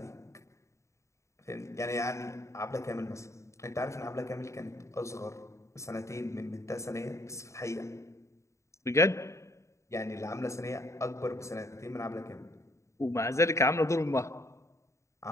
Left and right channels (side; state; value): right; late; 0.14 ms